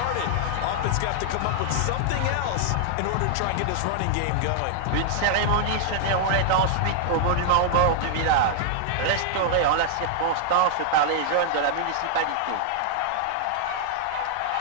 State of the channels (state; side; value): different; both; correlation -0.01